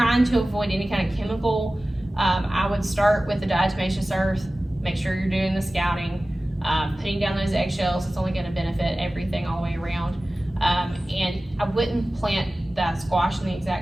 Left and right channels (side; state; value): both; normal; correlation 0.96